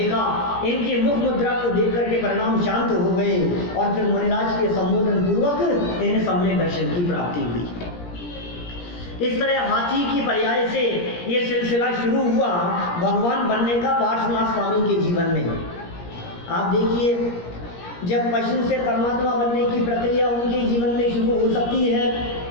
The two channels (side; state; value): right; late; 17 ms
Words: इनकी मुख मुद्रा को देख करके परिणाम शांत हो गए और फिर मुनिराज के संबोधन पूर्वक इन्हें सम्यक दर्शन की प्राप्ति हुई। इस तरह हाथी की पर्याय से ये सिलसिला शुरू हुआ भगवान बनने का पार्श्वनाथ स्वामी के जीवन में। आप देखिए, जब पशु से परमात्मा बनने की प्रक्रिया उनके जीवन में शुरू हो सकती है,